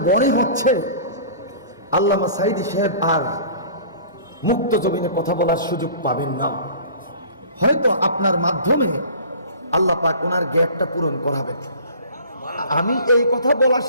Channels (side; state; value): both; inverted; correlation -0.44